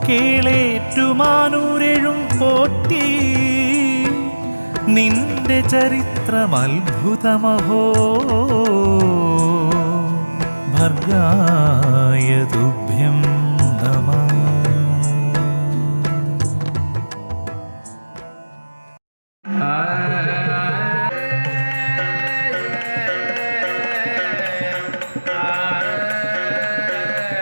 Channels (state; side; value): inverted; both; correlation -1.00